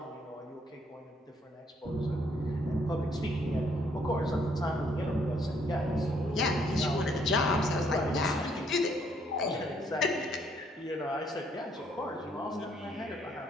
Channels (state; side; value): normal; both; correlation 0.68